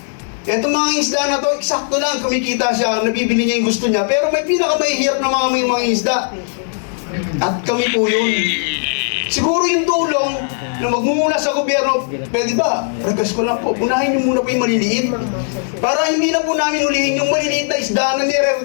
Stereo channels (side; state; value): right; silent; 65 dB below the other